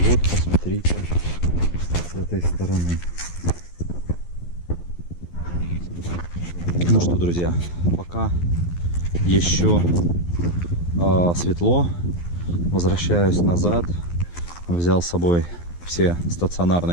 вот, посмотрите, с этой стороны. Ну что, друзья, пока еще светло, возвращаюсь назад. Взял с собой все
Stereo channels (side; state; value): right; late; 12 ms